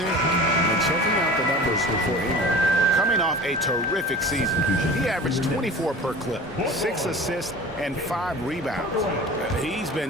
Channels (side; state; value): both; normal; correlation 0.39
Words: And checking out the numbers before Ingram. Coming off a terrific season, he averaged 24 per clip, 6 assists, and 5 rebounds. He's